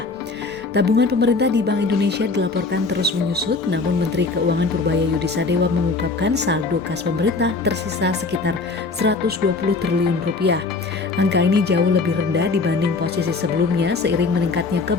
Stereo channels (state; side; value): quieter; right; 3.9 dB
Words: Tabungan pemerintah di Bank Indonesia dilaporkan terus menyusut, namun Menteri Keuangan Purbaya Yudisadewa mengungkapkan saldo kas pemerintah tersisa sekitar 120 triliun rupiah. Angka ini jauh lebih rendah dibanding posisi sebelumnya seiring meningkatnya